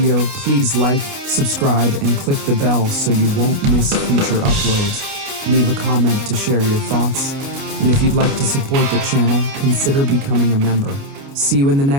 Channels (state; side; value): late; left; 29 ms